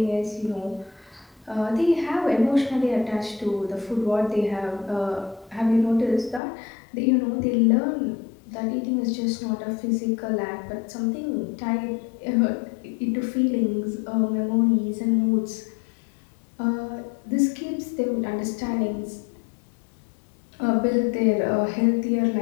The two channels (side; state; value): right; drops out; at 6.4 s